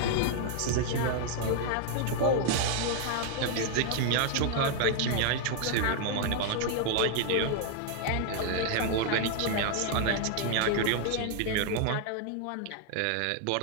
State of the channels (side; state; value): both; different; correlation 0.00